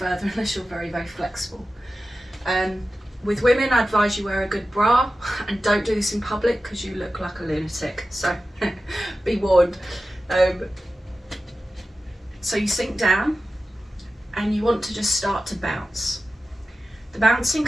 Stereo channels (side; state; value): both; normal; correlation 0.94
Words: unless you're very flexible. With women, I advise you wear a good bra, and don't do this in public because you look like a lunatic, so be warned. So you sink down, and you want to just start to bounce. The bouncing